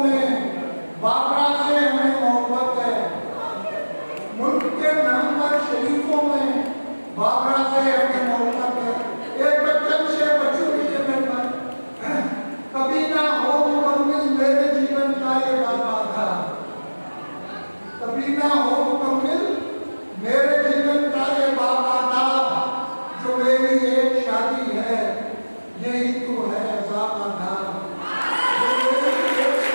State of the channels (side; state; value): both; inverted; correlation -1.00